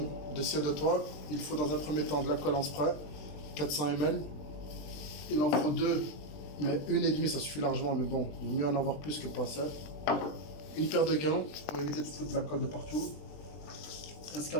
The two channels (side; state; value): right; late; 20 ms